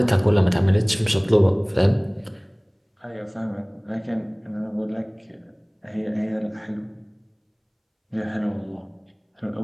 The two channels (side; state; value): both; identical; correlation 1.00